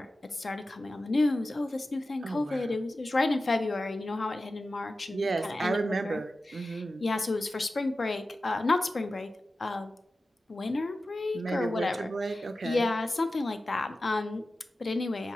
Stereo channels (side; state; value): both; normal; correlation 0.94